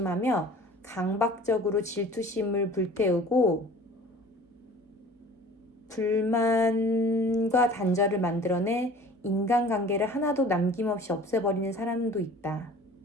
강박적으로 질투심을 불태우고 불만과 단절을 만들어내 인간관계를 하나도 남김없이 없애버리는 사람도 있다.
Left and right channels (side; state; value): both; normal; correlation 0.45